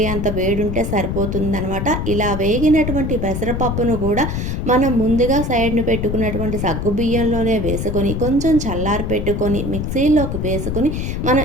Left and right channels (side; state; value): left; noise; rumble, 2 dB below the sound